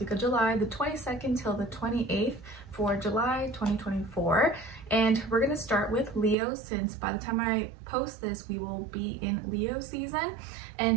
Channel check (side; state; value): left; drops out; at 6.4 s